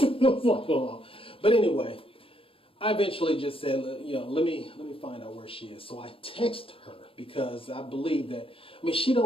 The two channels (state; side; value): late; right; 0.27 ms